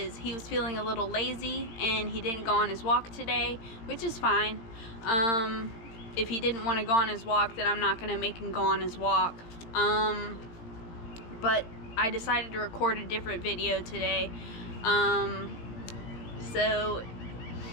he was feeling a little lazy and he didn't go on his walk today, which is fine. If he didn't want to go on his walk, then I'm not going to make him go on his walk. But I decided to record a different video today. So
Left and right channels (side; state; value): right; late; 18 ms